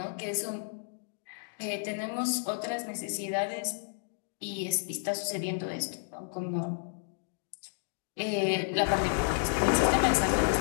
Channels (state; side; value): silent; right; digital silence